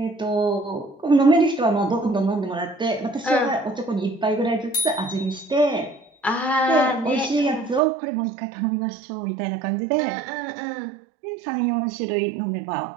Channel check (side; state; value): left; drops out; at 7.8 s